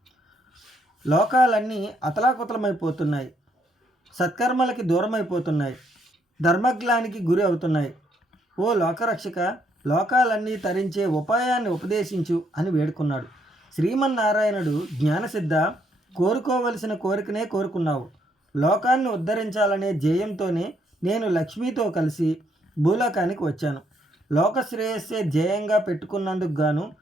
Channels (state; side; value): normal; both; correlation 0.72